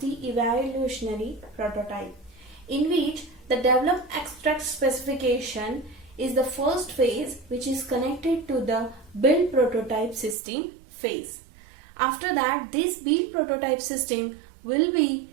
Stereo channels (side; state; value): left; drops out; at 10.4 s